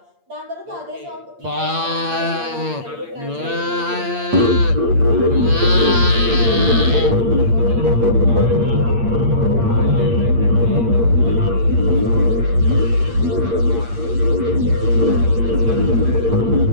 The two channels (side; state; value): left; late; 8.6 ms